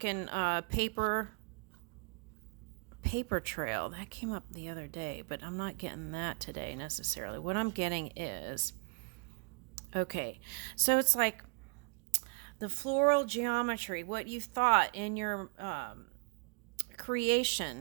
paper trail that came up the other day, but I'm not getting that today necessarily. What I'm getting is, okay, so it's like the floral geometry, what you thought in your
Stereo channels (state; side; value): quieter; left; 33.6 dB